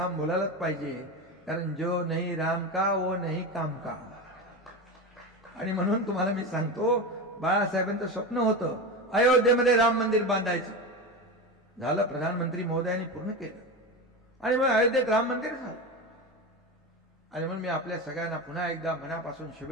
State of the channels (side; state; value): both; normal; correlation 0.22